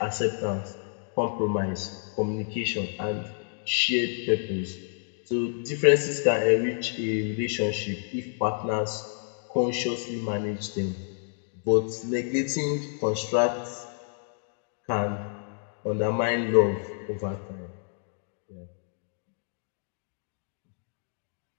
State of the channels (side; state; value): right; silent; digital silence